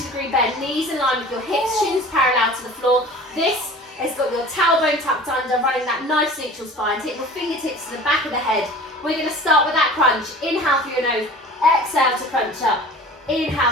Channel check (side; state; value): both; normal; correlation 0.42